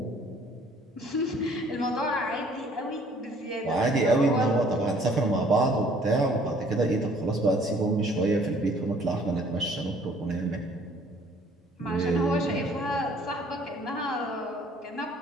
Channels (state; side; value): normal; both; correlation 0.57